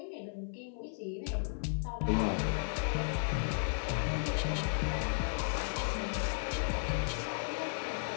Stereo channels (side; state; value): right; silent; 55 dB below the other